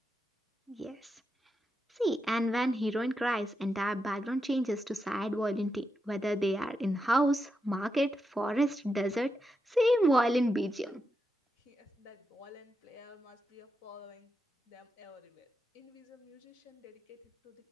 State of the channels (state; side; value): normal; both; correlation 0.86